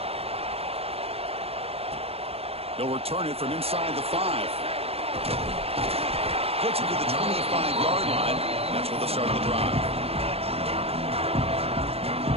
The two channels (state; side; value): late; left; 0.29 ms